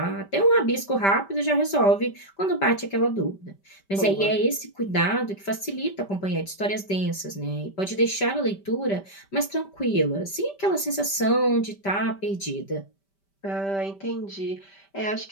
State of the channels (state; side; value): late; right; 5.1 ms